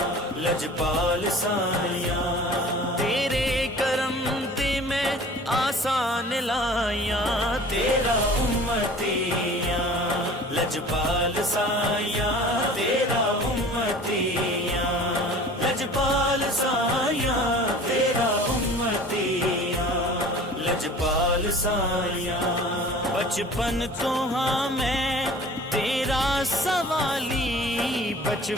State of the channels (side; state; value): both; normal; correlation 0.44